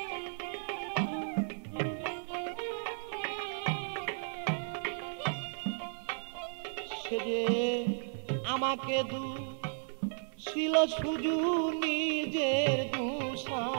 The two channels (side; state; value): left; silent; 55 dB below the other